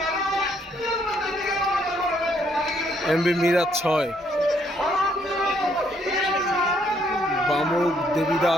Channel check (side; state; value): both; normal; correlation 0.70